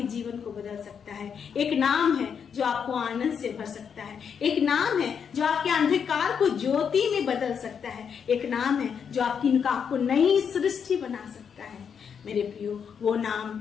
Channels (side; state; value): right; quieter; 7.1 dB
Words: जीवन को बदल सकता है, एक नाम है जो आपको आनंद से भर सकता है, एक नाम है जो आपके अंधकार को ज्योति में बदल सकता है, एक नाम है जो आपको नई सृष्टि बना सकता है। मेरे प्रियो, वो नाम